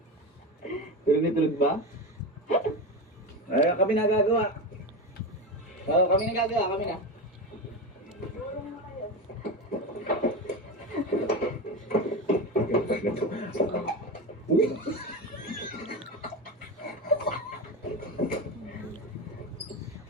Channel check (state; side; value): normal; both; correlation 0.20